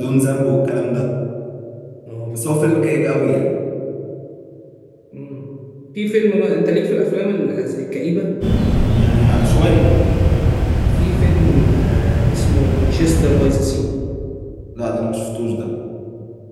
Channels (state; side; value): identical; both; correlation 1.00